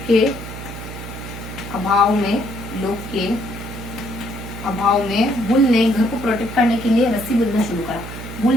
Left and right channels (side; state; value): right; noise; hum, 10 dB below the sound